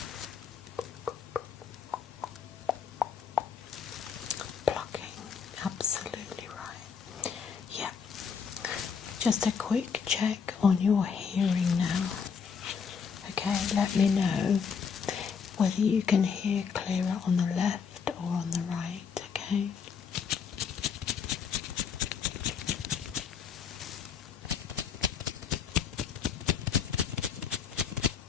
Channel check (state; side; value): quieter; right; 6.4 dB